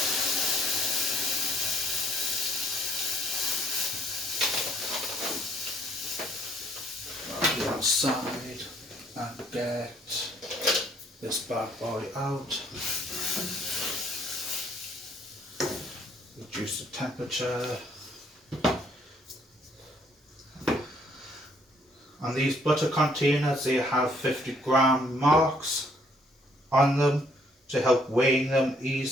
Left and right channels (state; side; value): normal; both; correlation 0.65